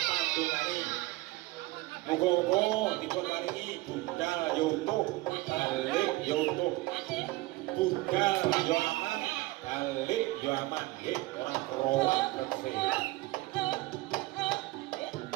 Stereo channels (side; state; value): left; quieter; 20.2 dB